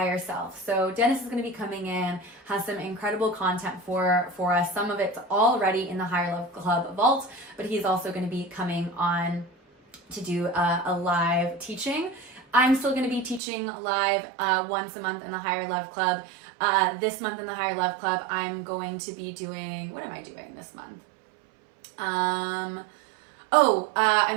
self. So Dennis is going to be coming in, has some incredible content for us. Some of it's already in the Higher Love Club vault, but he's also going to be coming on to do a live teaching. I'm still going to be teaching live once a month in the Higher Love Club. This month in the Higher Love Club, I'm going to be doing, what am I doing this month? I'm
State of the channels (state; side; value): drops out; left; at 13.4 s